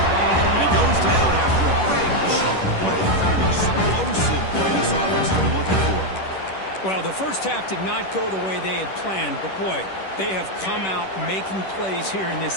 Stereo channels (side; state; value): right; late; 10 ms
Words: And he goes down after a big chunk play. The kind of explosive play this offense has been looking for. Well, the first half did not go the way they had planned, but boy, they have come out making plays here in this